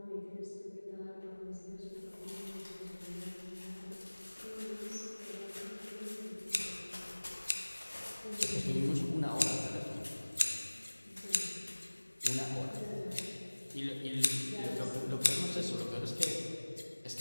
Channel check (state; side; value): inverted; both; correlation -1.00